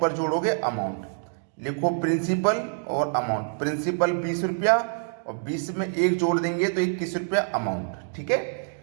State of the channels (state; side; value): silent; left; digital silence